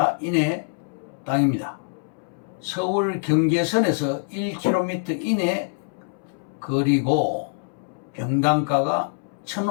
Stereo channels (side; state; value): right; silent; 62 dB below the other